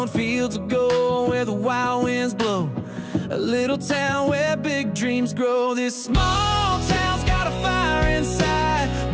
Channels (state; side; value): identical; both; correlation 1.00